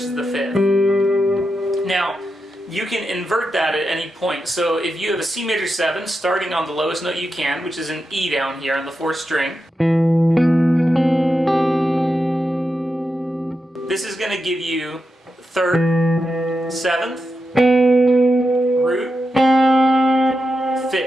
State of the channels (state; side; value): normal; both; correlation 0.88